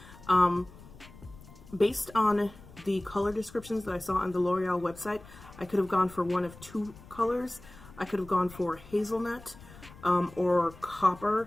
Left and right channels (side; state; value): left; noise; rumble, 20 dB below the sound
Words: Based on the color descriptions that I saw on the L'Oreal website, I could have gone for one of two colors. I could have gone for hazelnut or